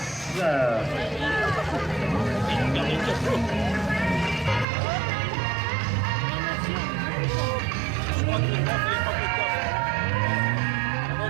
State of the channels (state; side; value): drops out; left; at 4.7 s